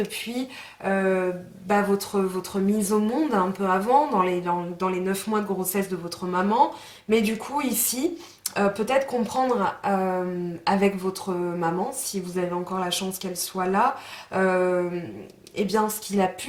votre mise au monde un peu avant, dans les 9 mois de grossesse de votre maman. Mais du coup, ici, peut-être comprendre avec votre maman, si vous avez encore la chance qu'elle soit là, eh bien, ce qu'il a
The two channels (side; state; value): both; identical; correlation 1.00